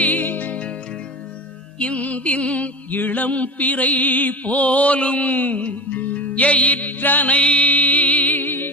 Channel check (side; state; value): both; normal; correlation 0.30